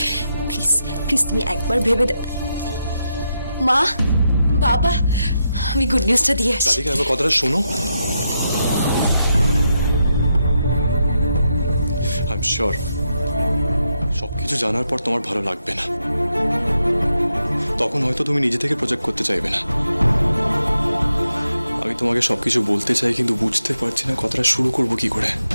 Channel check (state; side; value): inverted; both; correlation -0.83